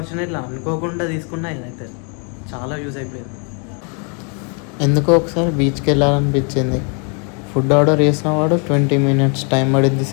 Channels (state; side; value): quieter; right; 37.5 dB